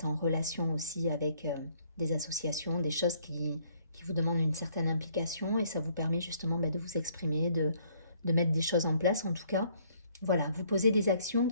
en relation aussi avec des associations, des choses qui vous demandent une certaine implication, et ça vous permet justement de vous exprimer, de mettre des choses en place. En tout cas, voilà, vous posez des actions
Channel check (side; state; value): both; inverted; correlation -0.64